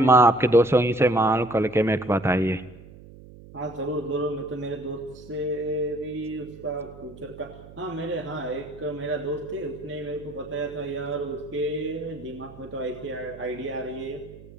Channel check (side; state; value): right; noise; hum, 19 dB below the sound